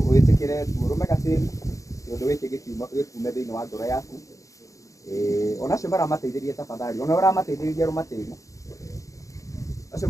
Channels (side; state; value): right; late; 0.16 ms